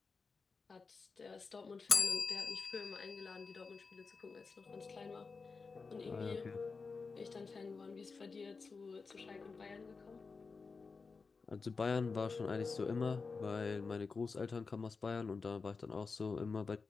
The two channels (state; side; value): quieter; right; 4.6 dB